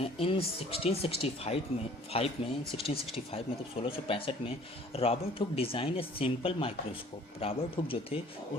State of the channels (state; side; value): normal; both; correlation 0.53